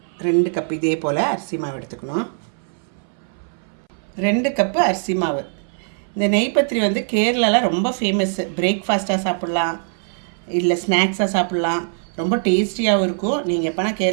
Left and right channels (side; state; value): left; silent; 62 dB below the other